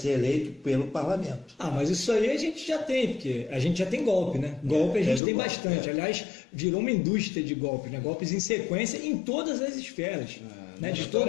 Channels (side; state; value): right; drops out; at 5.2 s